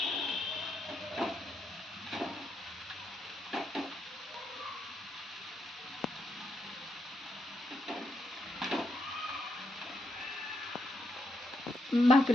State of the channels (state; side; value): normal; both; correlation 0.81